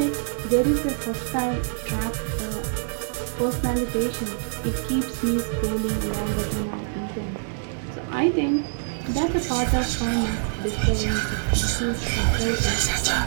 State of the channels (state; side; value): silent; left; digital silence